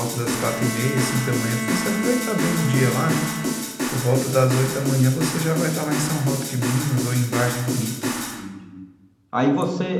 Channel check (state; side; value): identical; both; correlation 1.00